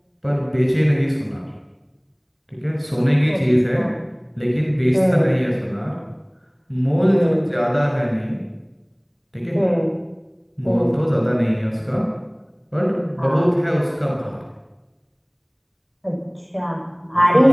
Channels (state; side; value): identical; both; correlation 1.00